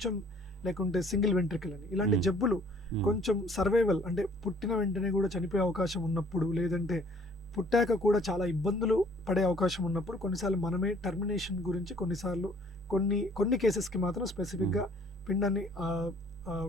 లేకుంటే సింగిల్ వెంట్రికల్ అని, ఇలాంటి జబ్బులు కొంచెం సర్వైవల్ అంటే పుట్టిన వెంటనే కూడా చనిపోయే అవకాశం ఉన్నప్పుడు, లేదంటే పుట్టాక కూడా చాలా ఇబ్బందులు పడే అవకాశం ఉన్నప్పుడు కొన్నిసార్లు మనమే టర్మినేషన్ గురించి కొన్ని కేసెస్కి మాత్రం స్పెసిఫిక్గా పిండాన్ని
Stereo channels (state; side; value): normal; both; correlation 0.57